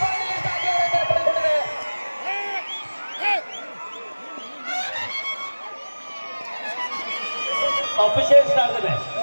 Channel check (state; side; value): inverted; both; correlation -1.00